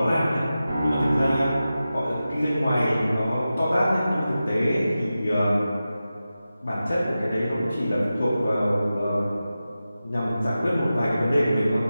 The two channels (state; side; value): inverted; both; correlation -0.93